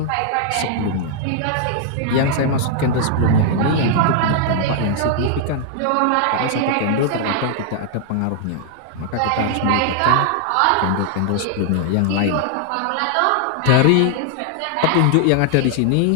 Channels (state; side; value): different; both; correlation 0.00